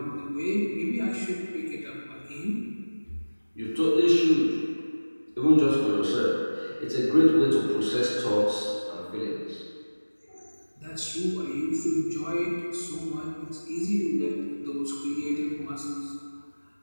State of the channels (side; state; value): both; inverted; correlation -1.00